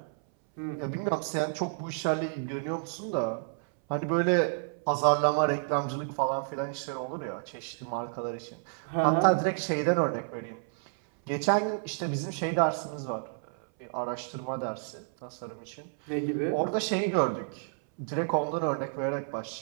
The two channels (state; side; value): silent; left; 58 dB below the other